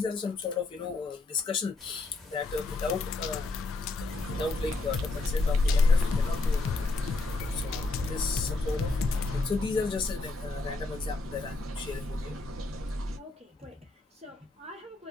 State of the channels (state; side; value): quieter; right; 3.3 dB